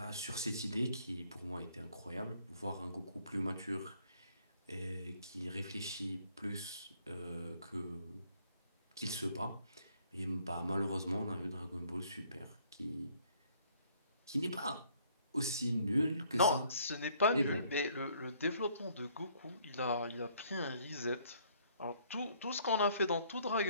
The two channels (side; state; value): both; inverted; correlation -0.63